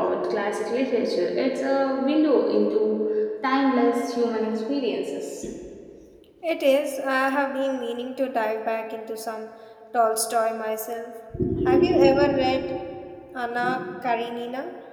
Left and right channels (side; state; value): both; identical; correlation 1.00